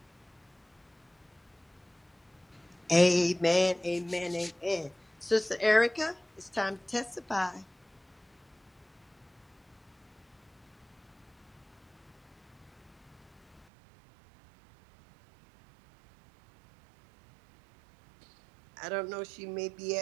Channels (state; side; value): drops out; left; at 13.7 s